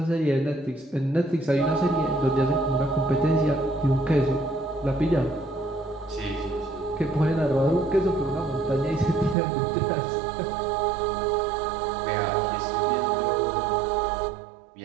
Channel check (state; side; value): drops out; left; at 9.3 s